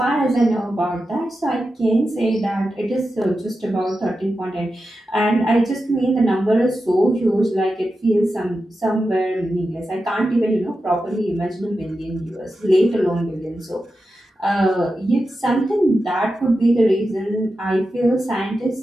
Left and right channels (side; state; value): both; normal; correlation 0.90